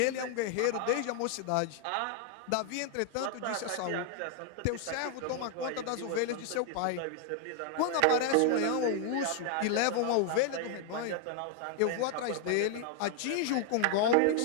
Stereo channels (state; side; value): different; both; correlation 0.00